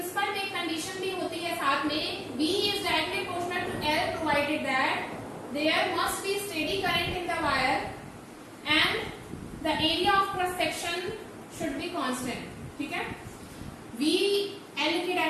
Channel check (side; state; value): both; identical; correlation 1.00